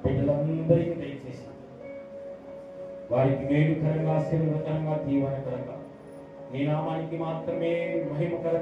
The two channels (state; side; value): identical; both; correlation 1.00